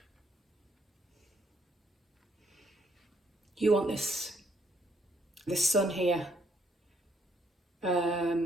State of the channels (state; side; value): normal; both; correlation 0.70